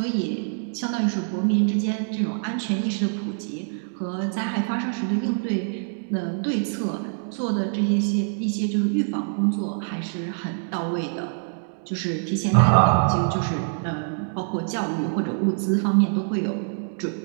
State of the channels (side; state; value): left; silent; digital silence